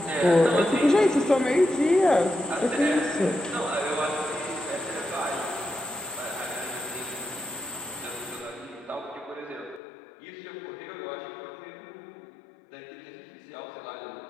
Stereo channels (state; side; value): drops out; right; at 9.8 s